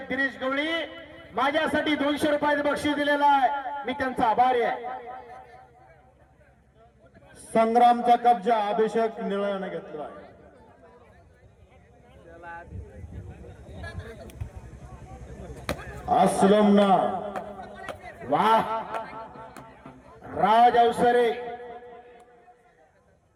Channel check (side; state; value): both; identical; correlation 1.00